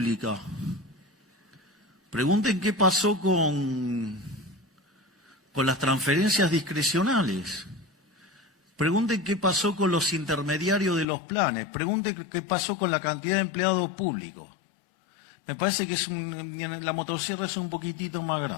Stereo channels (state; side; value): drops out; right; at 11.1 s